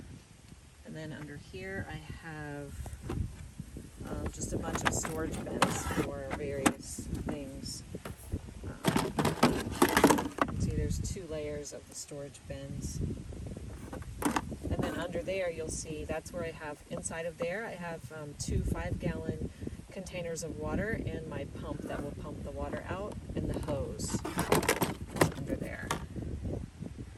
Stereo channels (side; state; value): both; identical; correlation 1.00